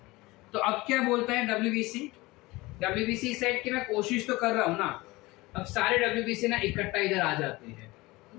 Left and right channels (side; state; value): right; quieter; 21.3 dB